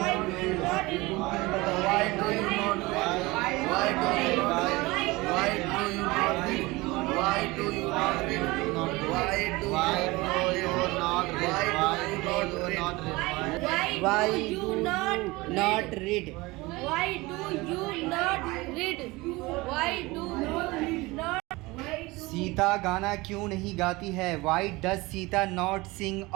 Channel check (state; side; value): quieter; left; 22.1 dB